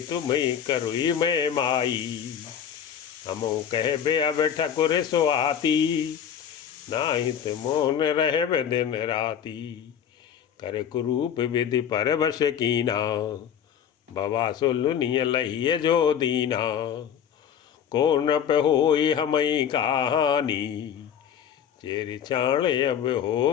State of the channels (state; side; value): quieter; right; 8.8 dB